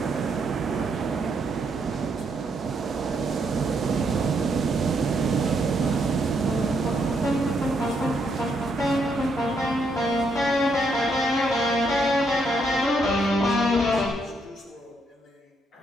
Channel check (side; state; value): both; normal; correlation 0.75